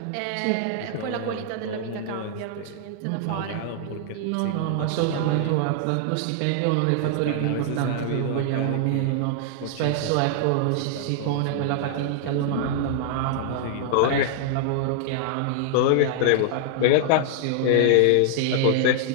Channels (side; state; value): both; different; correlation -0.01